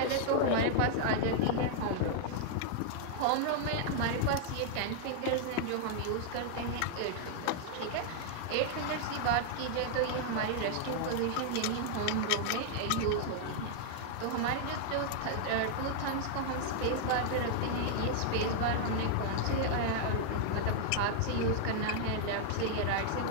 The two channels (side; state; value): both; different; correlation -0.01